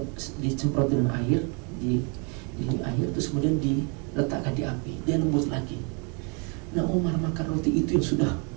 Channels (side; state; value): left; quieter; 35.1 dB